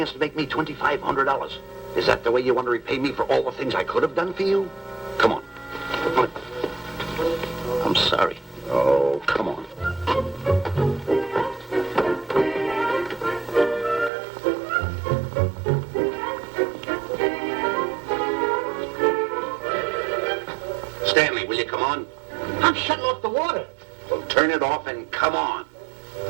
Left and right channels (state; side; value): drops out; left; at 14.1 s